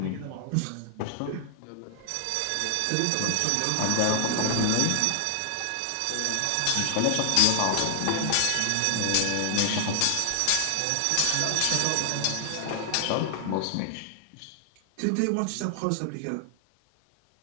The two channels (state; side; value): different; both; correlation 0.00